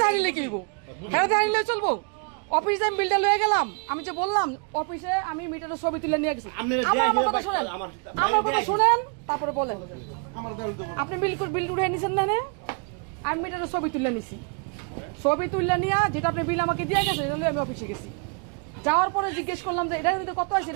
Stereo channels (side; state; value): left; quieter; 37.5 dB